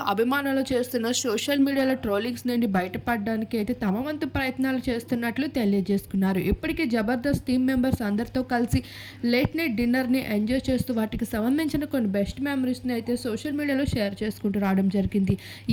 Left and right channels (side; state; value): both; identical; correlation 1.00